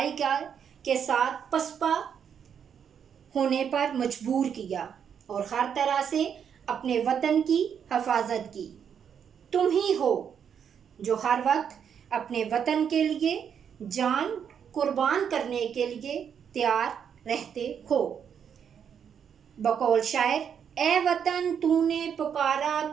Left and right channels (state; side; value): quieter; left; 7.9 dB